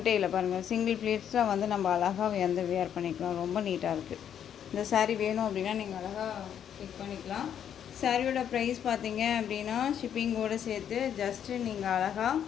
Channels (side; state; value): right; quieter; 9.1 dB